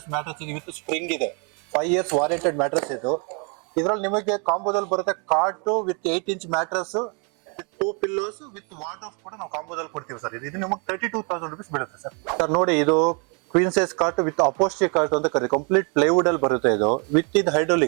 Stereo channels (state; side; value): quieter; left; 35.8 dB